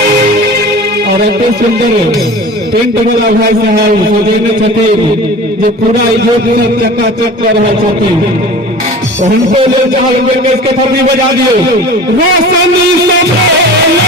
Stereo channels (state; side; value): normal; both; correlation 0.38